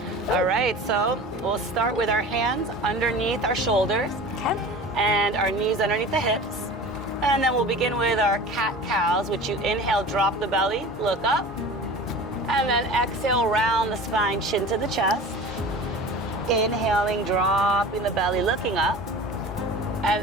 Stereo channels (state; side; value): normal; both; correlation 0.37